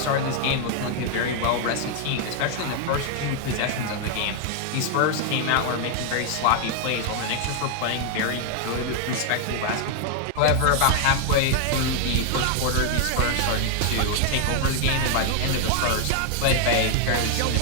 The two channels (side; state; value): both; different; correlation 0.00